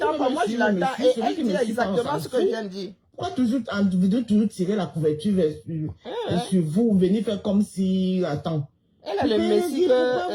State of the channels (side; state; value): both; identical; correlation 1.00